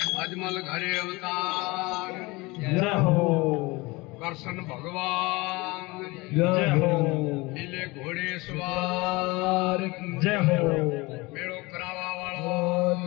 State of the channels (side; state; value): right; quieter; 23.5 dB